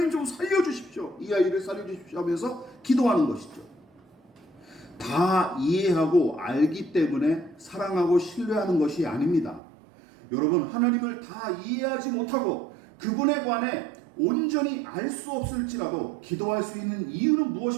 좀 살려주십시오. 이 아이를 살려주십시오 하면서 기도하는 것이죠. 다 이해하고 알기 때문에 사랑하고 신뢰하는 것이 아닙니다. 여러분, 하나님을 다 이해하지 못하고 그분에 관해 온전히 알 수 없을지라도 기도할 수 있는 이유는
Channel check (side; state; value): left; drops out; at 9.6 s